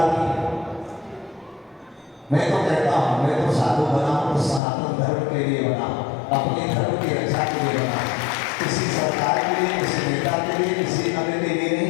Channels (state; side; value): drops out; right; at 4.6 s